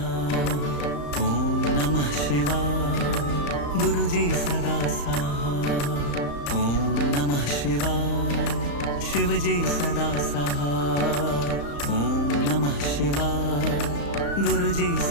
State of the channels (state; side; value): late; right; 35 ms